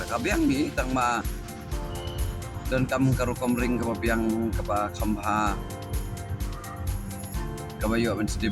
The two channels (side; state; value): both; identical; correlation 1.00